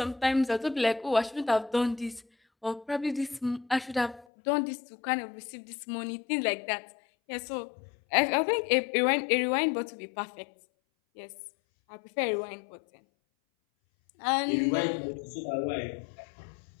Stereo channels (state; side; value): drops out; right; at 4.2 s